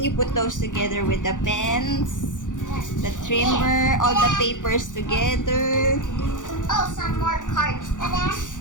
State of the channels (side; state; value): right; late; 0.87 ms